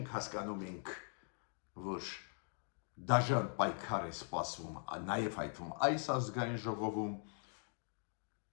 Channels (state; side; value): silent; right; 50 dB below the other